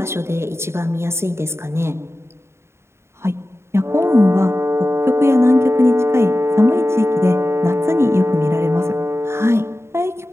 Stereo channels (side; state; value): left; late; 0.13 ms